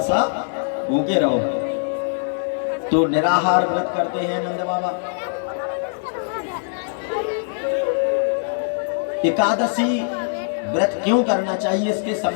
सा भूखे रहो। तो निराहार व्रत करते हैं नंद बाबा। एकादशी व्रत क्यों करना चाहिए, इसके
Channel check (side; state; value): right; silent; 64 dB below the other